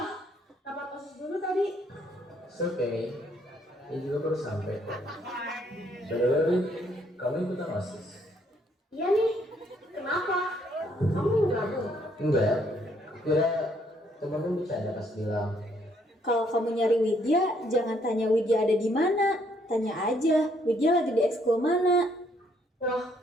Rapat OSIS dulu tadi. It's okay. Ini juga baru sampai. By kamu ikutan OSIS? Iya nih, kenapa? Kamu mau gabung? Enggak. Kira temanmu bercanda pas bilang. Kalau kamu nyari Widya, jangan tanya Widya ada di mana. Tanya aja, Widya lagi di ekskul mana. Wah,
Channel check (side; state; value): both; normal; correlation 0.69